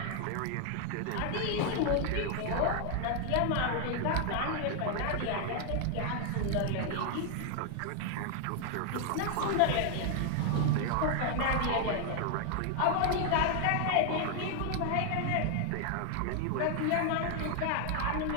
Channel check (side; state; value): both; different; correlation 0.00